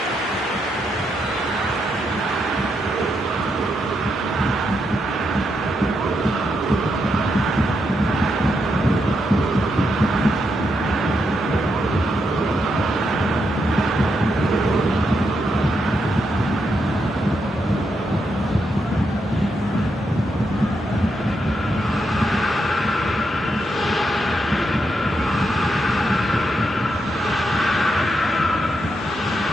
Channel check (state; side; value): normal; both; correlation 0.81